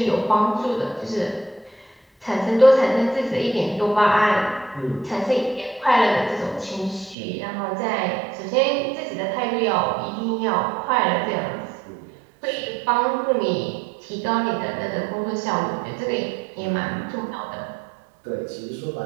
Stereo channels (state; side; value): drops out; left; at 7.2 s